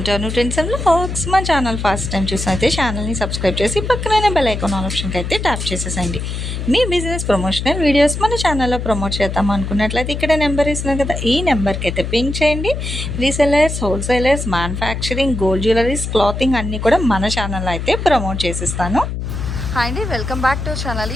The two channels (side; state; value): left; noise; hum, 4 dB below the sound